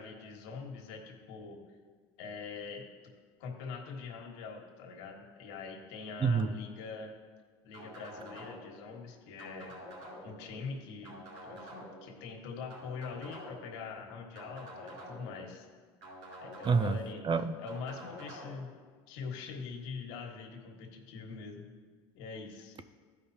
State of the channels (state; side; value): normal; both; correlation 0.60